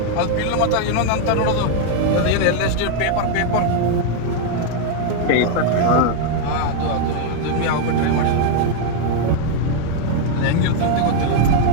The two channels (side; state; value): both; different; correlation 0.00